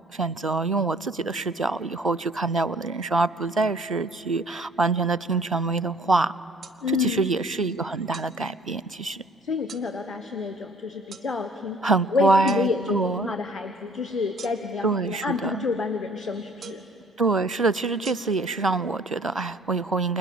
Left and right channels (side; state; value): both; normal; correlation 0.55